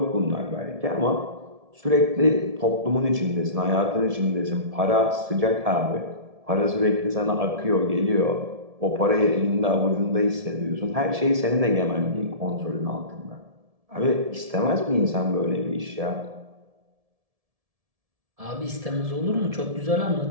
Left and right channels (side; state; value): left; late; 1.7 ms